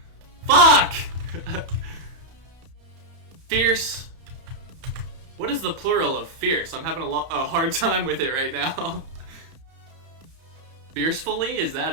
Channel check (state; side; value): late; left; 31 ms